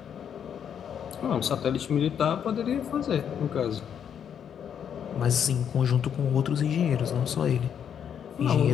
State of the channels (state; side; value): quieter; right; 8.4 dB